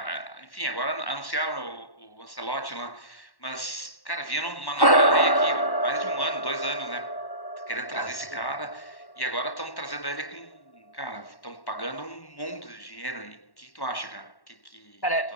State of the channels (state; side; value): late; right; 1.1 ms